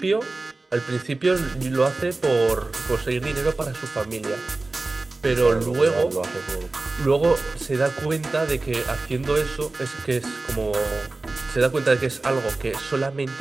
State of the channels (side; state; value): left; quieter; 3.3 dB